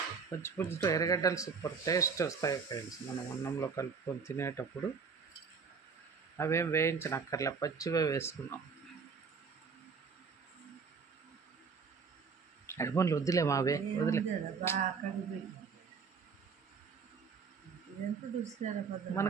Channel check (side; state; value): left; quieter; 5.5 dB